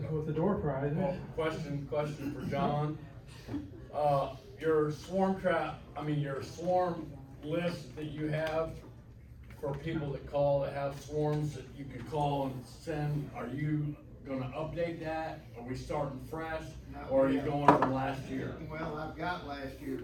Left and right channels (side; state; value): both; identical; correlation 1.00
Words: with the door prizes. Well, question for John. Your swarm list that you have for people that call, that have swarms, that you can call and send, are you gonna update that? Are we starting fresh, No, or are you yeah. going from last year? Well, I've got last